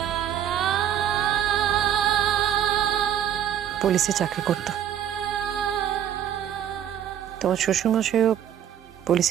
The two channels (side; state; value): left; quieter; 9.9 dB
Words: পুলিশে চাকরি করতো। তোমার শ্বশুরমশাইও